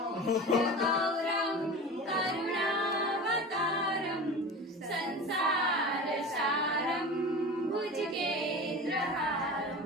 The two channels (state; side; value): normal; both; correlation 0.32